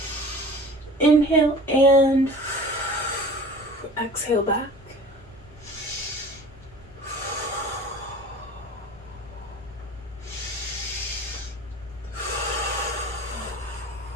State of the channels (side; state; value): both; normal; correlation 0.42